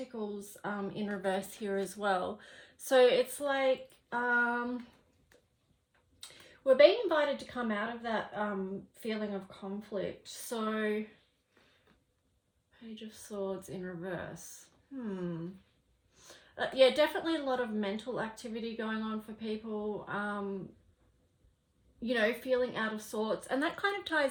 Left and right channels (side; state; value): both; identical; correlation 1.00